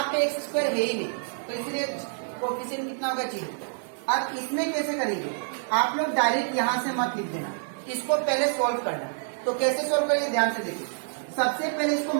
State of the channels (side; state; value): left; silent; digital silence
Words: पे एक्स स्क्वायर है ही नहीं, तो इसलिए कोफिशिएंट कितना होगा, 0। अब इसमें कैसे करेंगे, आप लोग डायरेक्ट यहाँ से मत लिख देना, इसको पहले सोल्व करना। तो कैसे सोल्व करेंगे, ध्यान से देखिए। सबसे पहले इसको